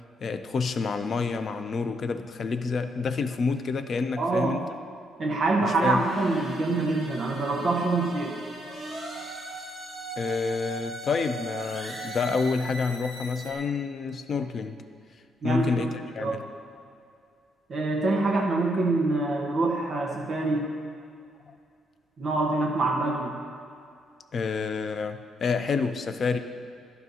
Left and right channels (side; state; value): both; normal; correlation 0.75